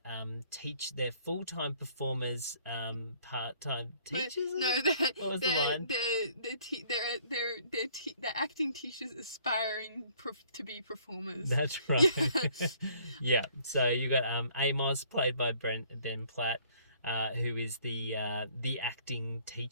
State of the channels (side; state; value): both; inverted; correlation -0.60